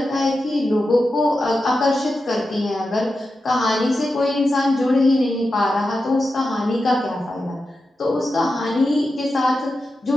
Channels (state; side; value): normal; both; correlation 0.90